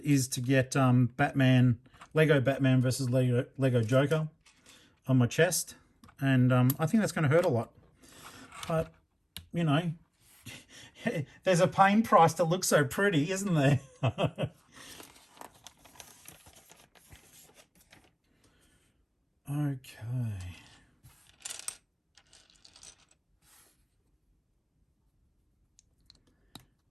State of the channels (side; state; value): both; identical; correlation 1.00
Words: to get Lego Batman versus Lego Joker on my chest, and I think that's going to hurt a lot. But, you know, there's a pain price to look so pretty, isn't there? Okay.